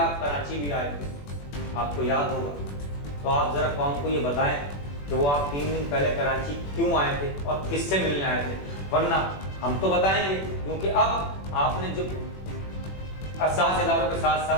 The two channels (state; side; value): late; right; 21 ms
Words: کراچی بھی آئے تھے، آپ کو یاد ہوگا۔ تو آپ ذرا قوم کو یہ بتائیں کہ وہ آپ 3 دن پہلے کراچی کیوں آئے تھے اور کس سے ملنے آئے تھے، ورنہ ہم تو بتائیں گے، کیونکہ اب آپ نے جو اساس اداروں کے ساتھ